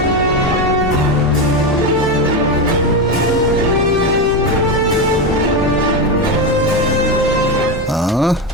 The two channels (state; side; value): normal; both; correlation 0.13